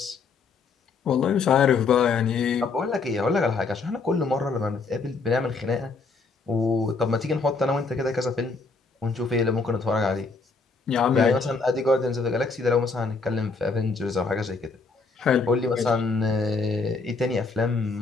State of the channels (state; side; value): quieter; right; 4.3 dB